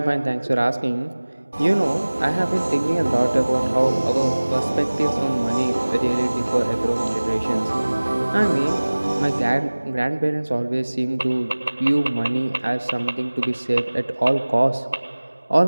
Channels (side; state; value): both; inverted; correlation -1.00